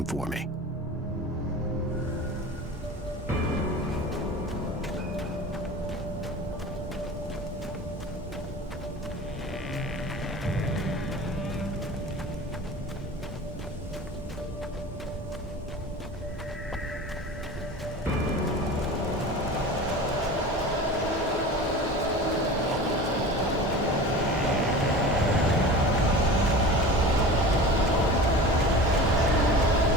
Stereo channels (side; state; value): both; normal; correlation 0.35